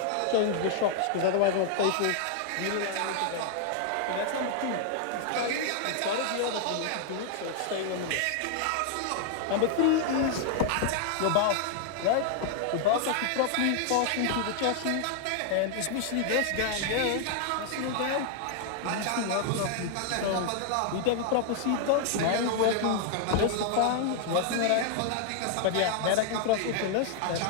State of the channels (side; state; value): both; different; correlation 0.00